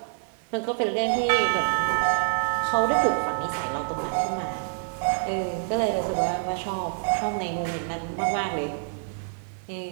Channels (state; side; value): silent; left; 60 dB below the other